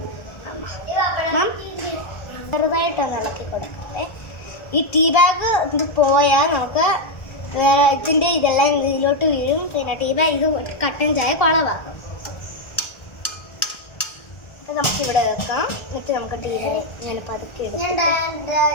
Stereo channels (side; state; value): right; late; 1.4 ms